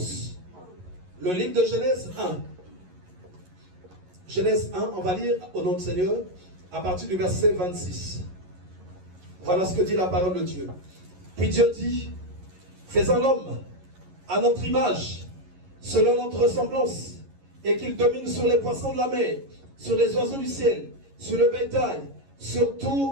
Le livre de Genèse 1. Genèse 1, on va lire au nom du Seigneur à partir du verset 26. Voilà ce que dit la parole de Dieu. Puis Dieu dit, faisons l'homme à notre image, selon notre ressemblance, et qu'il domine sur les poissons de la mer, sur les oiseaux du ciel, sur le bétail, sur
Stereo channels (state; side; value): late; left; 11 ms